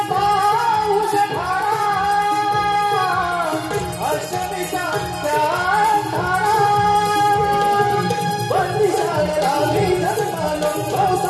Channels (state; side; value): identical; both; correlation 1.00